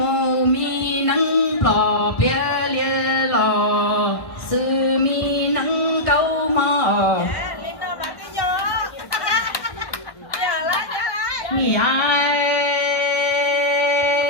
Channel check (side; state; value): right; late; 1.2 ms